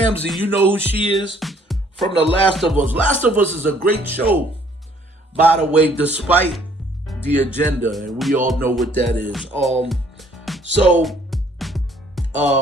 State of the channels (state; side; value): normal; both; correlation 0.61